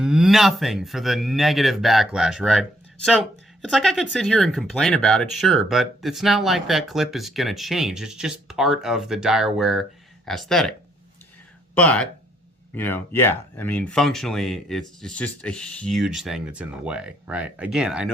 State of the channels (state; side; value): normal; both; correlation 0.70